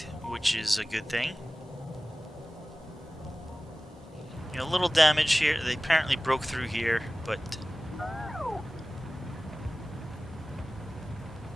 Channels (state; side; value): normal; both; correlation 0.97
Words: which is a good thing. You know, a little damage here. They apparently broke through here, but